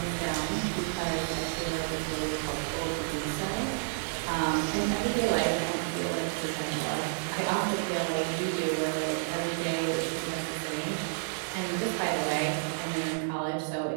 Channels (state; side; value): silent; left; digital silence